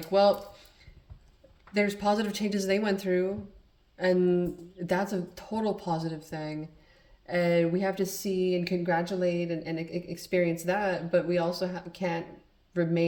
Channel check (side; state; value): both; identical; correlation 1.00